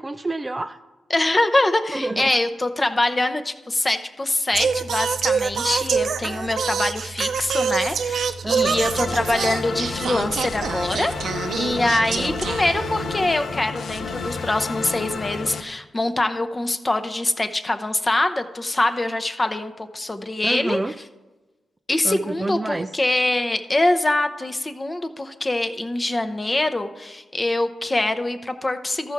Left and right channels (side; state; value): both; normal; correlation 0.92